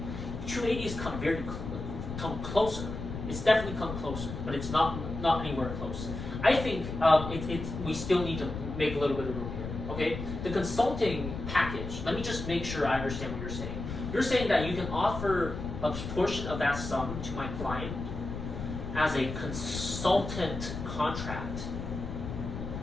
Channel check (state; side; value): noise; left; rumble, 7 dB below the sound